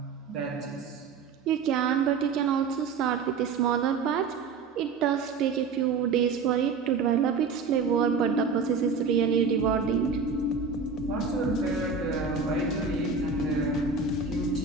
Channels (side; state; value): left; quieter; 5.1 dB